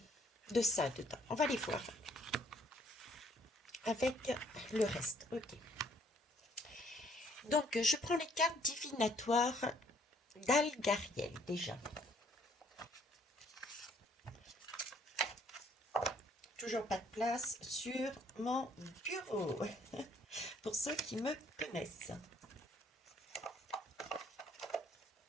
ça dedans. On va les voir avec le reste. Ok. Donc, je prends les cartes divinatoires d'Algariel déjà. toujours pas de place sur mon bureau, pour ceux qui me connaissent.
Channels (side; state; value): both; normal; correlation 0.63